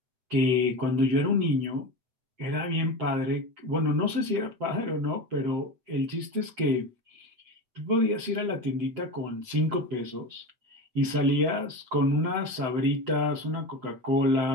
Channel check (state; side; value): late; left; 7.8 ms